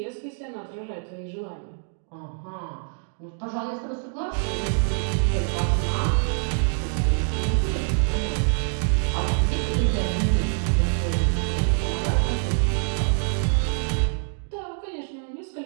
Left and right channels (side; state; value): left; silent; 62 dB below the other